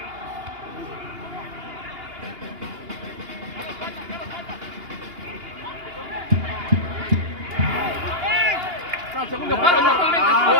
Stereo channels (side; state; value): left; late; 2.8 ms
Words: Segundo palo, totalmente.